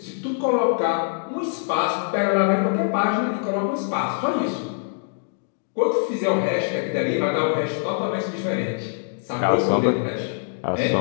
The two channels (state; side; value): silent; right; digital silence